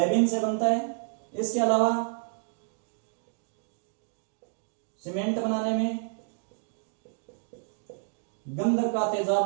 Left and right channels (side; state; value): left; silent; digital silence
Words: से बनता है। इसके अलावा सीमेंट बनाने में, गंधक का तेजाब